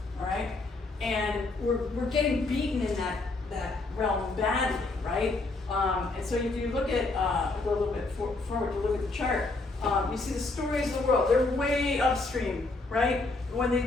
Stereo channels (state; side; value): quieter; right; 3.3 dB